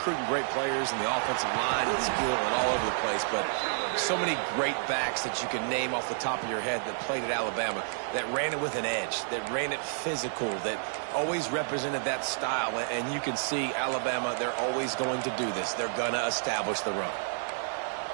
great players in the offensive line and skill and all over the place, but so many great backs that you can name off the top of your head that played at Alabama, that ran it with an edge, that ran it physical, that always represented that style. And you can see Alabama, they're always going to do this. They're going to establish the run.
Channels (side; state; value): left; silent; digital silence